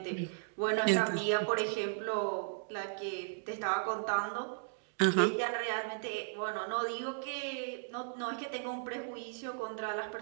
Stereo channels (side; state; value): left; silent; digital silence